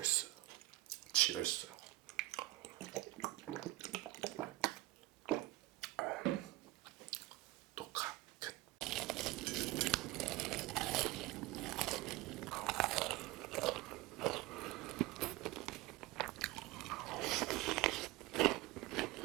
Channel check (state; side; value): quieter; left; 19.1 dB